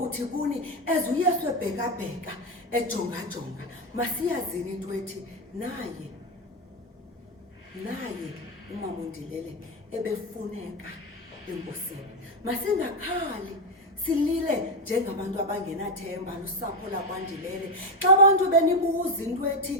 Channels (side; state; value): both; normal; correlation 0.09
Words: kuni uYesu ebheka ejonga masiyazini into ethi naye uMama uNdilele ebefuneka enkosini masingakhali silile njengabantu abangenathemba lusapho lakwaNdilele xa abantu benibuza into ethi